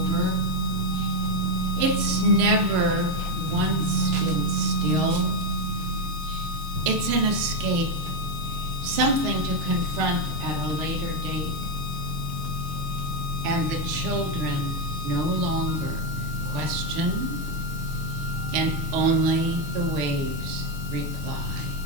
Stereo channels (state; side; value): late; left; 6.6 ms